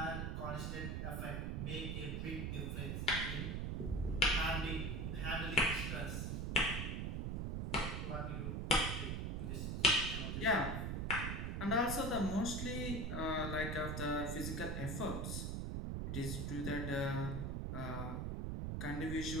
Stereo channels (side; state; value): right; noise; rumble, 1 dB below the sound